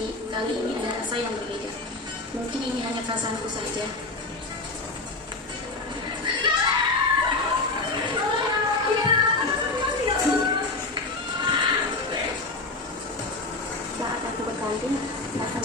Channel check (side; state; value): right; quieter; 3.3 dB